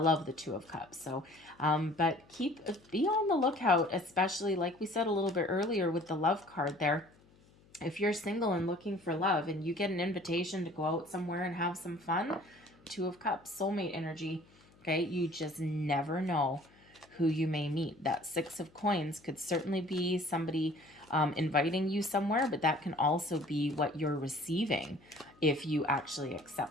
the 2 of Cups. So but be on the lookout, especially like we said a little bit earlier with the love card there. If you're single and looking for love and you get an invitation to go out somewhere and have some fun, 2 of Cups, soulmate energy. Okay, you just never know who you may meet. That 6 of coins could certainly be somebody inviting you somewhere, but that can also be what you're receiving if you actually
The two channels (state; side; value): noise; left; hum, 28 dB below the sound